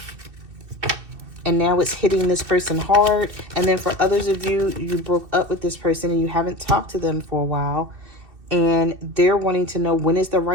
And now it's hitting this person hard. And then for others of you, you broke up with this person and you haven't talked to them for a while. And they're wanting to know when is the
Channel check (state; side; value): late; left; 2.6 ms